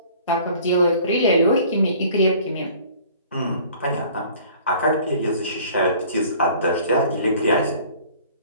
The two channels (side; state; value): both; inverted; correlation -0.50